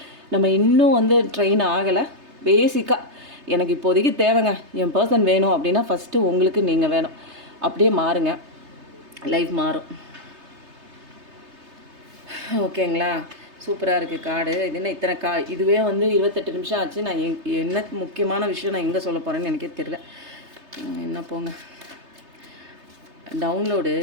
நம்ம இன்னும் வந்து ட்ரெயின் ஆகலை. பேசிக்காக எனக்கு இப்போதைக்கு தேவைங்க, என் பர்சன் வேணும் அப்படின்னா ஃபஸ்ட்டு உங்களுக்கு நீங்கள் வேணும். அப்படியே மாறுங்க, லைஃப் மாறும். ஓகேங்களா? சூப்பராக இருக்குது கார்டு. இது என்ன இத்தனை இதுவே வந்து 28 நிமிஷம் ஆச்சு. நான் என்ன முக்கியமான விஷயம் நான் எங்கே சொல்ல போகிறேன்னு எனக்கே தெரியல. என்ன போங்க, டவுன்லோடு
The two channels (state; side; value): late; left; 3.3 ms